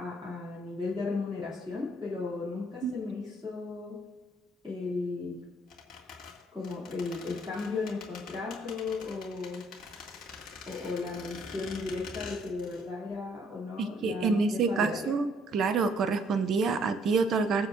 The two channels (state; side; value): normal; both; correlation 0.65